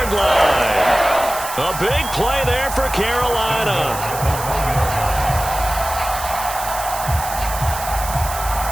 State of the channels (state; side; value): noise; right; hiss, 9 dB below the sound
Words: line. A big play there for Carolina.